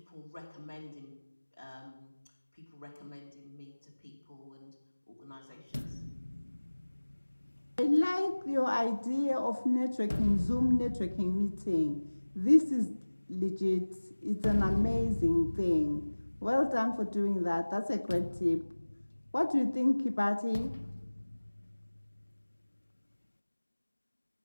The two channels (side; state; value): both; inverted; correlation -1.00